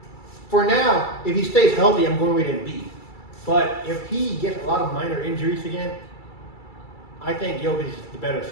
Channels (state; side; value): late; right; 2.3 ms